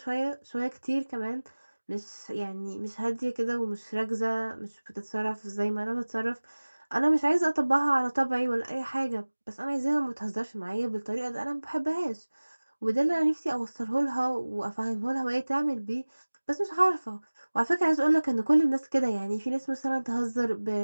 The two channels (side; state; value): both; inverted; correlation -1.00